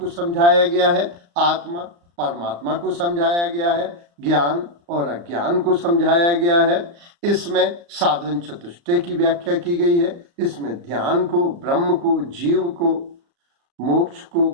समझाया गया है, आत्मा परमात्मा को समझाया गया है, ज्ञान और अज्ञान को समझाया गया है। इसमें साधन चतुष्टय की व्याख्या की गई है। इसमें ध्यान को, ब्रह्म को, जीव को, मोक्ष को,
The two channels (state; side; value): late; left; 35 ms